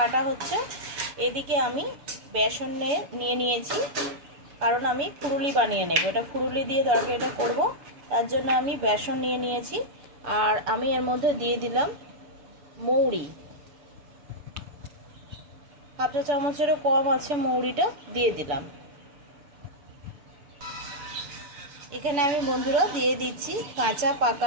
হচ্ছে, এদিকে আমি বেসন নিয়ে নিয়েছি, কারণ আমি ফুরুলি বানিয়ে নেব। এটা ফুরুলি দিয়ে তরকারিটা করব, তার জন্য আমি বেসন নিয়ে নিয়েছি। আর আমি এর মধ্যে দিয়ে দিলাম মৌরি, হাফ চা চামচেরও কম আছে, মৌরিটা দিয়ে দিলাম। এখানে আমি বন্ধুরা দিয়ে দিচ্ছি কাঁচা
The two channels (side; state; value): left; late; 6.9 ms